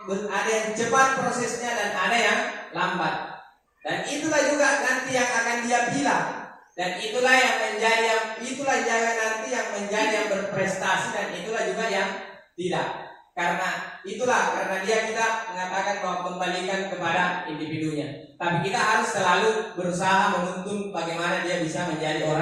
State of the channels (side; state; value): both; identical; correlation 1.00